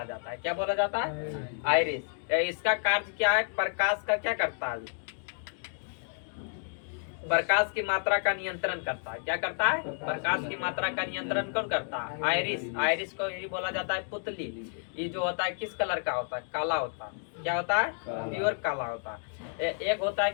जाता है। क्या बोला जाता है? आइरिस। इसका कार्य क्या है? प्रकाश का क्या करता है? प्रकाश की मात्रा का नियंत्रण करता है। क्या करता है? प्रकाश की मात्रा का नियंत्रण कौन करता है? आइरिस। आइरिस को ही बोला जाता है पुतली। ये जो होता है किस कलर का होता है? काला होता है। क्या होता है? प्योर काला होता है। एक होता है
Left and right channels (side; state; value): right; silent; digital silence